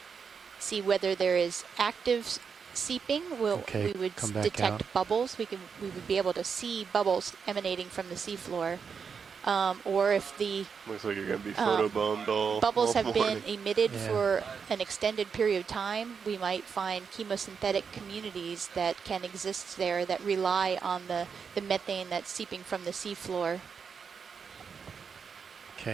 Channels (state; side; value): quieter; left; 6.1 dB